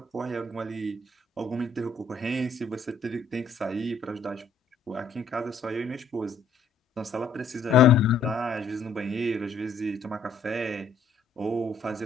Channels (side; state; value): right; quieter; 3.9 dB